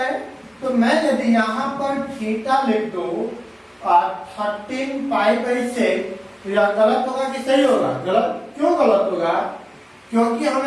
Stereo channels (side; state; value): both; identical; correlation 1.00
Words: तो मैं यदि यहाँ पर थीटा लिख दूं 13 पाई बाई 6 तो यह गलत होगा कि सही होगा? गलत। क्यों गलत होगा? क्योंकि